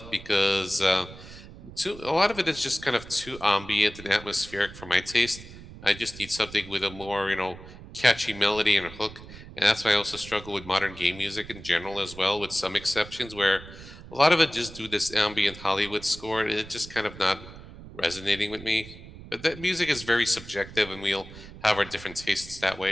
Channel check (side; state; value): right; noise; rumble, 16 dB below the sound